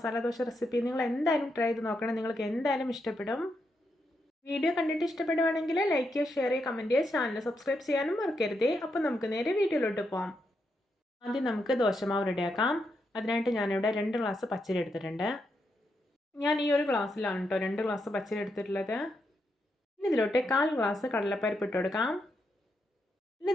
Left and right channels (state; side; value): normal; both; correlation 0.82